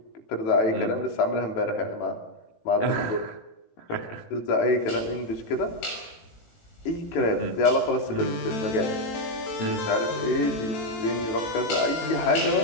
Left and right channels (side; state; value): right; late; 18 ms